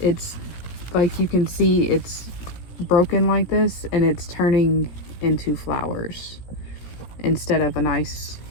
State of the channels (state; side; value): late; right; 17 ms